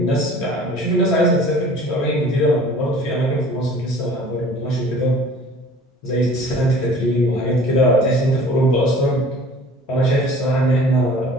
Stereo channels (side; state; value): both; normal; correlation 0.47